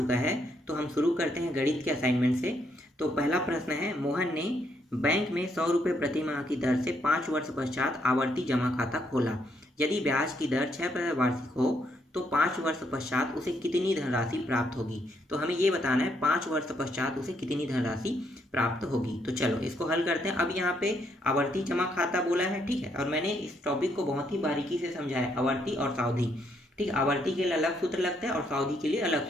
है, तो हम शुरू करते हैं गणित के असाइनमेंट से। तो पहला प्रश्न है, मोहन ने बैंक में 100 रुपये प्रति माह की दर से 5 वर्ष पश्चात आवर्ती जमा खाता खोला। यदि ब्याज की दर 6% वार्षिक हो तो 5 वर्ष पश्चात उसे कितनी धनराशि प्राप्त होगी। तो हमें ये बताना है 5 वर्ष पश्चात उसे कितनी धनराशि प्राप्त होगी। तो चलो इसको हल करते हैं। अब यहाँ पे आवर्ती जमा खाता बोला है, ठीक है, और मैंने इस टॉपिक को बहुत ही बारीकी से समझाया, आवर्ती और सावधि। ठीक, आवर्ती के लिए अलग सूत्र लगता है और सावधि के लिए अलग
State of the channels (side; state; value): both; normal; correlation 0.74